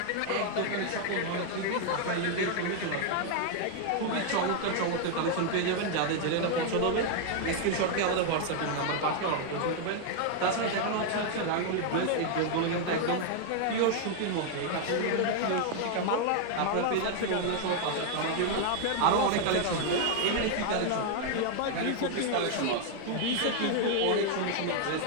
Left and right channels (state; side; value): different; both; correlation 0.00